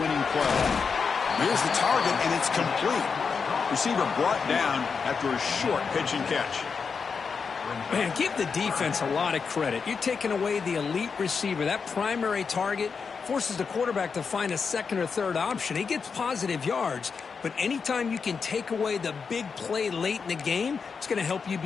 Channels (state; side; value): quieter; right; 5.6 dB